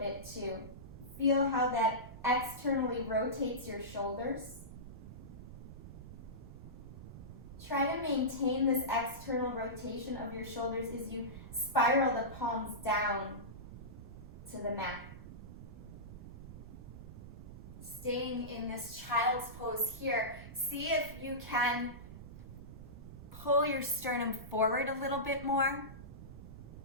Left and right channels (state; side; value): noise; right; rumble, 13 dB below the sound